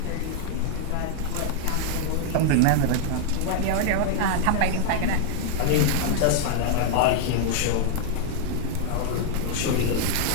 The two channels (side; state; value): both; different; correlation -0.01